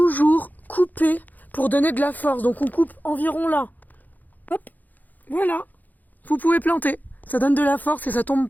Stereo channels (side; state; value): right; late; 0.083 ms